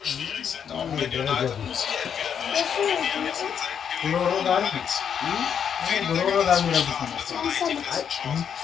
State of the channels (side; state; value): right; quieter; 7.9 dB